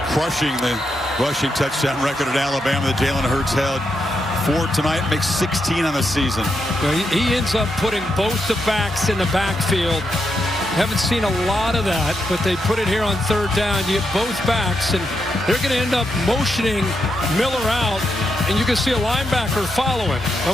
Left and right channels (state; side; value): normal; both; correlation 0.83